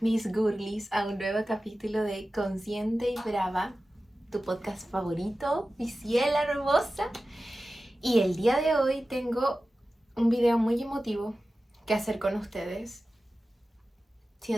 girlies, a un nuevo capítulo de Consciente y Brava, tu podcast favorito, mi ciela hermosa. Y el día de hoy tengo un video muy emotivo que hacer con ustedes.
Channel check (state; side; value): normal; both; correlation 0.95